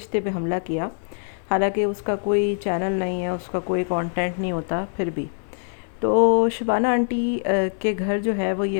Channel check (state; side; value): silent; right; 63 dB below the other